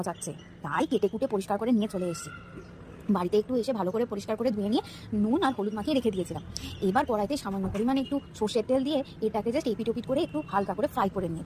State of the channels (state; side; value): identical; both; correlation 1.00